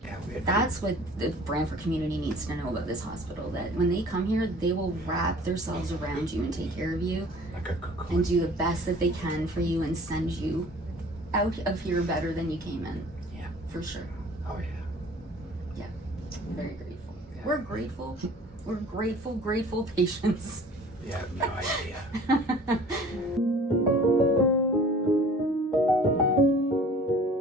Yeah, That's what the Brantford community needs to know about this hospital. That when they come here, they will wrap themselves around you and take care of you like a cocoon. and do the best that they can for you and send you out of here better than you came in. Yeah. For sure. Oh yeah. Very grateful. Yeah. We're grateful. We're grateful patients. You have no idea.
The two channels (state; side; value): normal; both; correlation 0.48